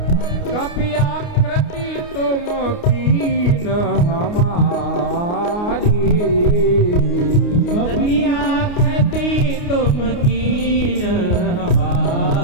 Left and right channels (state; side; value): late; right; 29 ms